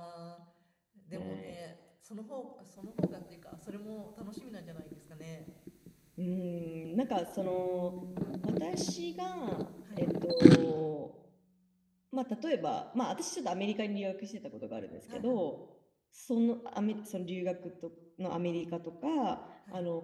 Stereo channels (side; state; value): both; identical; correlation 1.00